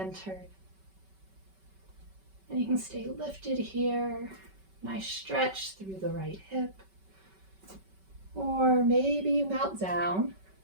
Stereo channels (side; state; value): left; late; 5.2 ms